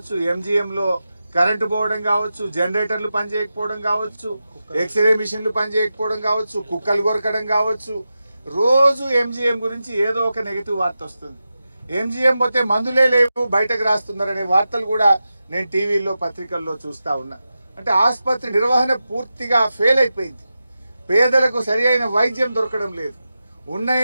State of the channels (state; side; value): inverted; both; correlation -0.92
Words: ఎంజీఎంలో కరెంటు పోవడం కావచ్చు, జనరేటర్లు పనిచేయకపోవడం కావచ్చు, ఎక్స్రే మిషన్లు పనిచేయకపోవడం కావచ్చు, కుక్కలు కొరకడం కావచ్చు. రోజు ఎంజీఎం గురించి ఏదో ఒక నెగటివ్ వార్త వస్తుంది. ఎంజీఎం పోతే మందులే లేవు బయటకు రాస్తున్నారనే వార్తలు కూడా నేను టీవీల్లో పత్రికల్లో చూస్తా ఉన్నా. అంటే ఆసుపత్రి నిర్వహణ పూర్తిగా ఫెయిల్ అయిపోయింది. పేదలకు సరి అయిన వైద్యం దొరకడం లేదు. ఉన్న